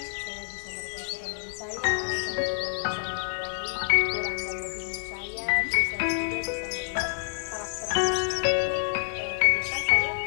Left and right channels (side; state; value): right; silent; digital silence